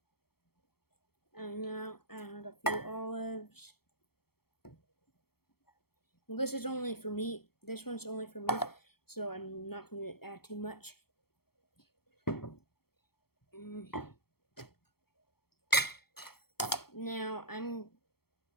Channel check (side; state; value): right; late; 0.95 ms